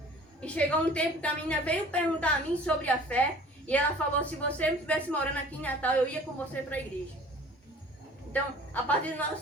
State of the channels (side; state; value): both; normal; correlation 0.47